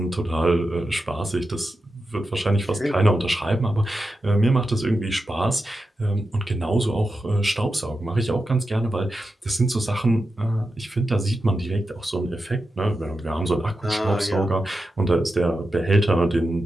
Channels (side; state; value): both; normal; correlation 0.90